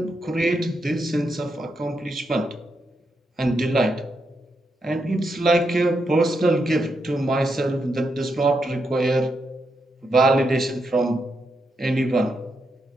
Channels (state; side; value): normal; both; correlation 0.83